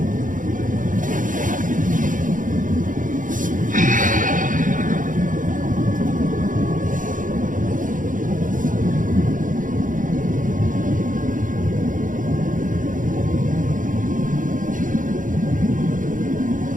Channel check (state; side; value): late; left; 0.38 ms